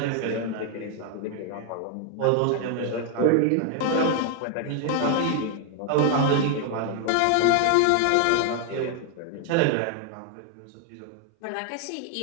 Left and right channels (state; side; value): different; both; correlation 0.00